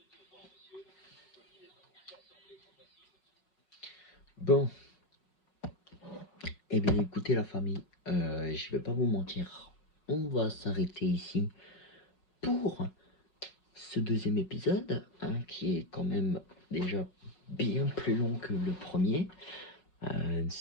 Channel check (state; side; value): late; right; 5.5 ms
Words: Bon. Eh bien écoutez la famille, je vais pas vous mentir. On va s'arrêter ici pour ce deuxième épisode, hein, qui est quand même déjà bien plus long que le premier.